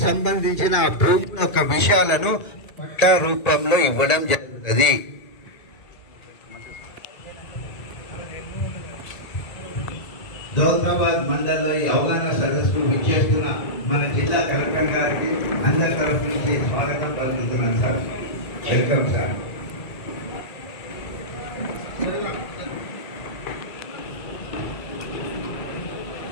సంబంధించిన ఆ భూమి యొక్క విషయాలను పట్టా రూపంలో ఇవ్వడం జరుగుతుంది. దౌలతాబాద్ మండలంలో ఈ అవగాహన సదస్సుకు విచ్చేస్తున్న మన జిల్లా కలెక్టర్ గారికి అందరి తరఫు నుంచి స్వాగతం పలుకుతున్నాను సార్. Welcome sir.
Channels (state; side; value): late; right; 1.9 ms